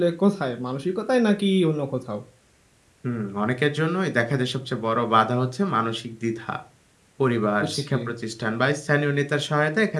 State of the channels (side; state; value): both; identical; correlation 1.00